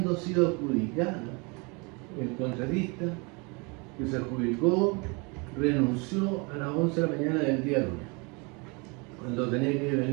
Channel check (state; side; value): quieter; left; 29.9 dB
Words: sido adjudicada, el contratista que se adjudicó renunció a las 11 de la mañana del día lunes. Cuando tenía que